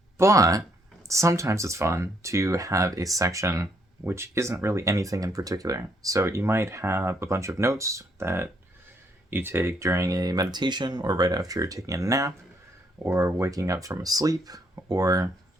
But sometimes it's fun to have a section which isn't really anything in particular. So you might have a bunch of notes that you take during a meditation or right after you're taking a nap or waking up from a sleep or,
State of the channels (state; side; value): normal; both; correlation 0.71